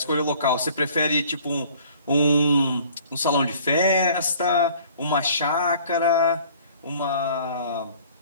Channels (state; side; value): inverted; both; correlation -0.53